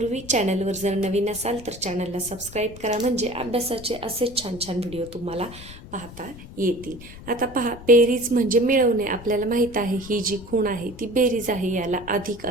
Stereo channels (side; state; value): left; noise; rumble, 16 dB below the sound